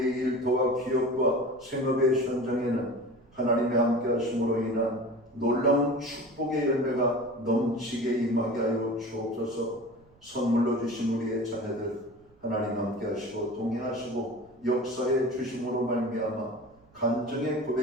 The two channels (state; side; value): noise; right; rumble, 30 dB below the sound